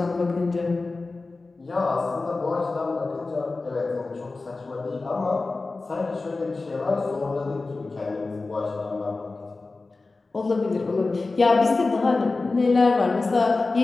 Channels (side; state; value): right; quieter; 3.6 dB